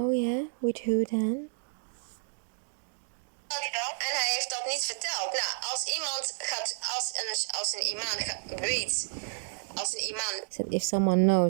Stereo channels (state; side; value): silent; left; digital silence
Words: yeah, with who then? En hij heeft dat niet verteld. Nou, als iemand gaat, als een imam weet, als een imam... Said if someone